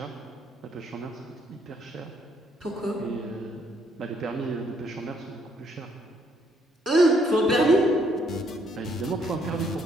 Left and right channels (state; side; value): normal; both; correlation 0.70